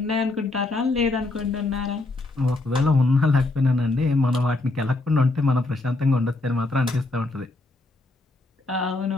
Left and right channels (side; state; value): right; quieter; 3.0 dB